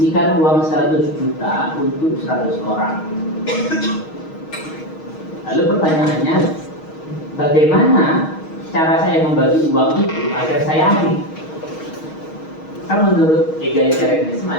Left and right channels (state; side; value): late; right; 6.4 ms